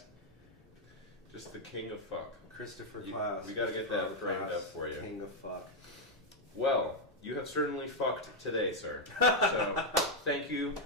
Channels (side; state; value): both; normal; correlation -0.01